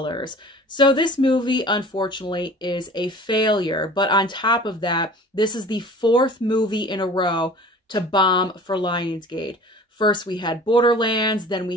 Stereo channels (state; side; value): normal; both; correlation 0.44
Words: So this movie, unfortunately, is a failure. But on top of that, this is the 4th movie in a row to bomb for Lionsgate. First, we had Borderlands, then